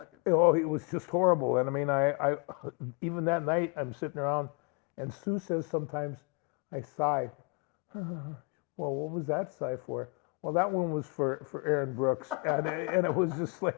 Oh, it was just horrible. And I mean, I even that night, I'm sitting around, and Sue says sometimes, I sigh. Well, what was that sigh for? Well, that one was for Aaron Brooks, and it was just like,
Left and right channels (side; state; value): right; quieter; 30.9 dB